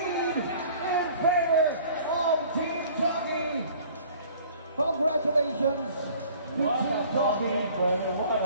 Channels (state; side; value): inverted; both; correlation -0.51